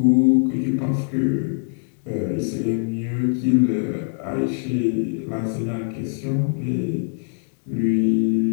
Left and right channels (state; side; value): silent; right; 61 dB below the other